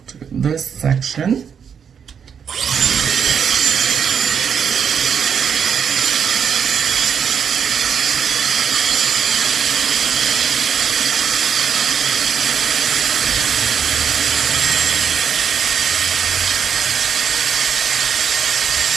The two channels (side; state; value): left; quieter; 7.3 dB